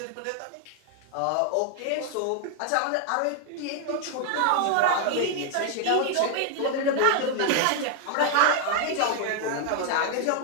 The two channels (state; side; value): different; both; correlation 0.00